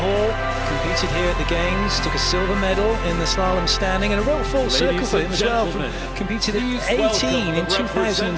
Competed here at the Games, took a silver medal in the slalom standing, and a real full circle for him as well. Competed at 18 in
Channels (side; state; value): both; identical; correlation 1.00